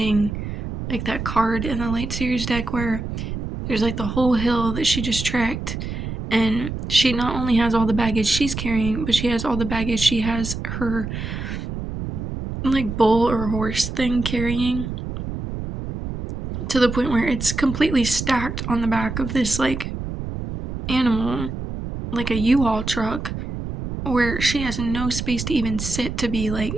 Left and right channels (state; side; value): noise; right; rumble, 6 dB below the sound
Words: like that card in the Light Series deck where there's like the whole hill that she just trekked, and she not only has all the baggage she's carrying, but she has all the baggage she has her like bull or horse thing carrying, to the point where it's completely stacked on the back of this like animal, like a U-Haul truck, where she has no space to even sit to be like